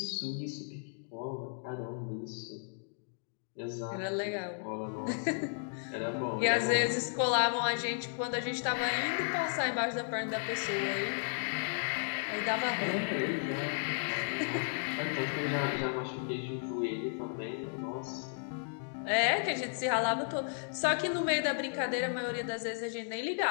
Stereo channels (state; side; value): silent; right; digital silence